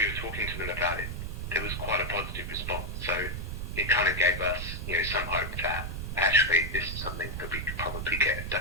were talking to them about it, there was quite a positive response. So it kind of gave us, some hope that actually this is something that we could probably get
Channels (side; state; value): right; noise; rumble, 5 dB below the sound